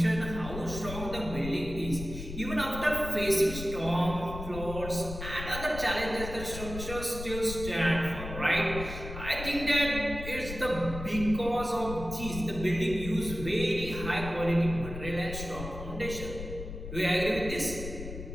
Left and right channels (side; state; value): left; noise; rumble, 9 dB below the sound